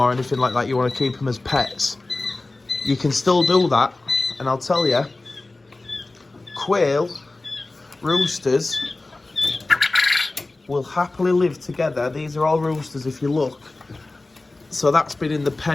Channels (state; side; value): quieter; right; 3.1 dB